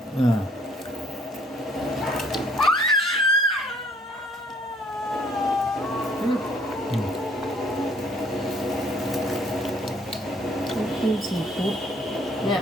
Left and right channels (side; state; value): both; normal; correlation 0.61